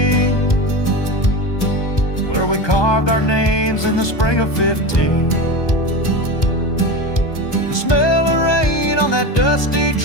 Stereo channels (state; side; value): late; right; 1.2 ms